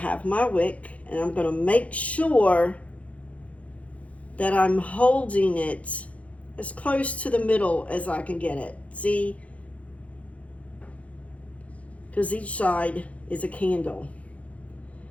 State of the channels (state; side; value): late; right; 0.065 ms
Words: my wick, and I'm going to make sure that I'm holding it as close to the middle as I can get it. See? Because each side is a candle.